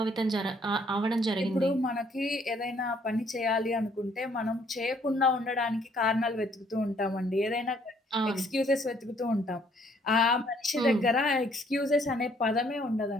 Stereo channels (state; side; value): normal; both; correlation 0.64